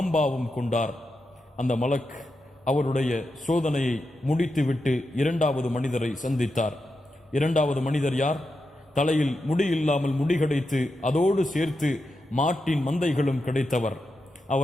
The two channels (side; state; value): both; normal; correlation 0.87